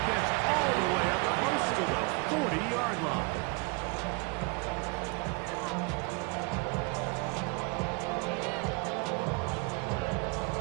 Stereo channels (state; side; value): quieter; left; 28.6 dB